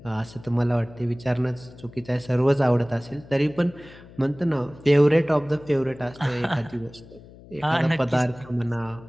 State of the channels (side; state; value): left; noise; hum, 20 dB below the sound